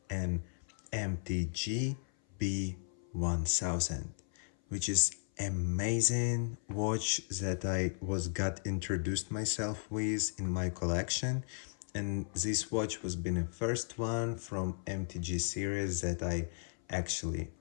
an MTG-B1000, which is amazing watch that I got introduced myself with in my collection, and this watch was been the first one from MTG series that I actually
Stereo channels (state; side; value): silent; right; 54 dB below the other